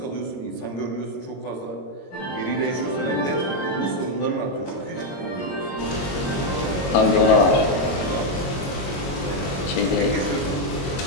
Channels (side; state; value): right; late; 22 ms